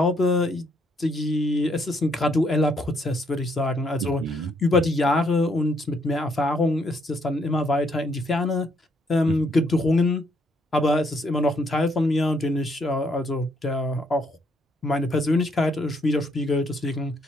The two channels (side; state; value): both; normal; correlation 0.71